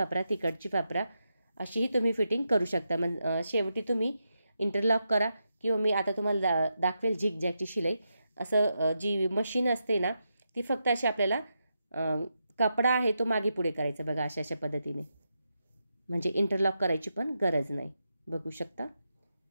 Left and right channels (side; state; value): both; inverted; correlation -0.86